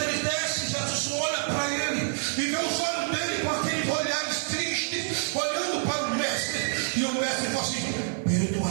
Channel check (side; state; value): left; silent; 56 dB below the other